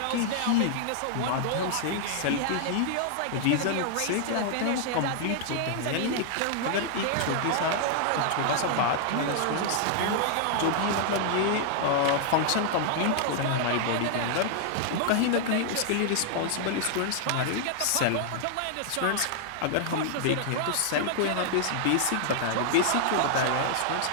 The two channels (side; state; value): both; different; correlation -0.01